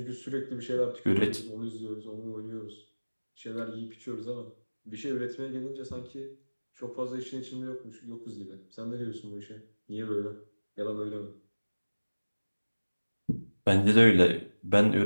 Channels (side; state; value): both; inverted; correlation -1.00